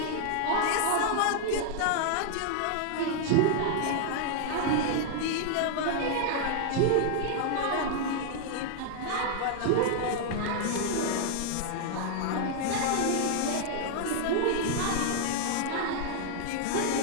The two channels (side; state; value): both; different; correlation 0.00